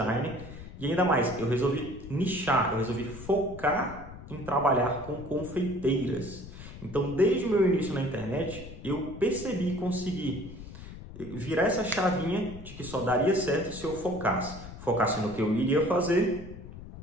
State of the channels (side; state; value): left; noise; rumble, 13 dB below the sound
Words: e ainda mais, eu resolvi nichar, eu resolvi focar em trabalhar com confeiteiras. Então, desde o meu início na internet, eu percebi e consegui virar essa chavinha de que só daria certo se eu focasse no que eu iria fazer,